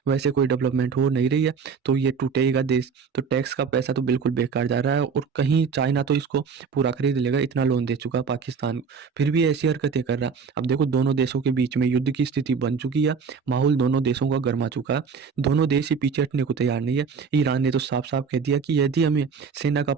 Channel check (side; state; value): left; quieter; 5.8 dB